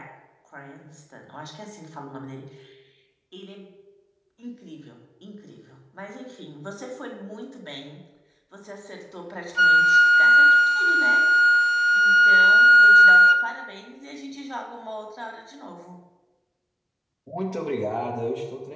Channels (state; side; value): identical; both; correlation 1.00